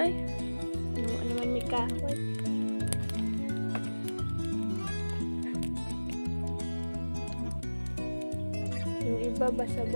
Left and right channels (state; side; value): inverted; both; correlation -1.00